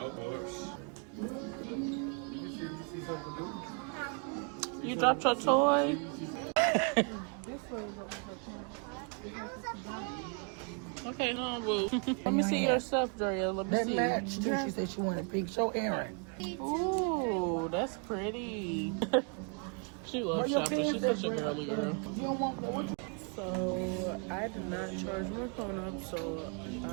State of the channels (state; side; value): quieter; left; 37.7 dB